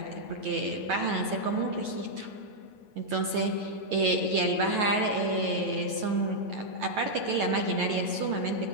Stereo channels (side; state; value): left; late; 9.3 ms